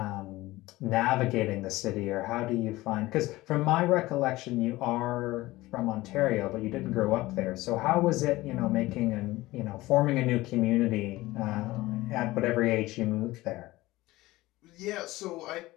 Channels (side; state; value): right; quieter; 18.6 dB